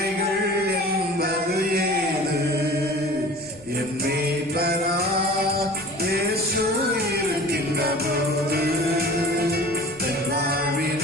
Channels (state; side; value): noise; left; rumble, 24 dB below the sound